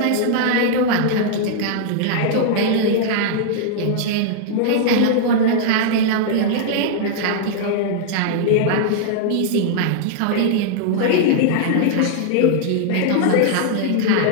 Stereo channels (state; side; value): different; both; correlation -0.01